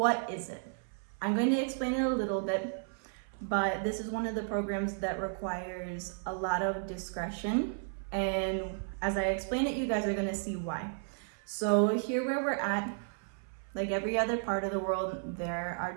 is it? I'm going to explain it a little bit, but this is one of the programs that requires a lot of discretion. And as I explain it, you guys are going to see why. So here where we're at, like every other part of the world, there are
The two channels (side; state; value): left; silent; 55 dB below the other